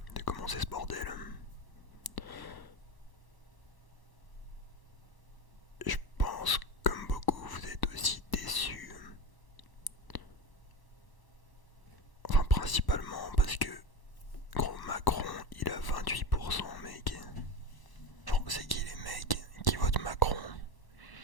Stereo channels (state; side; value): late; right; 1.1 ms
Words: commencer ce bordel, je pense comme beaucoup vous êtes aussi déçus. Enfin principalement parce que gros Macron il a 28% mec. Genre c'est qui les mecs qui votent Macron?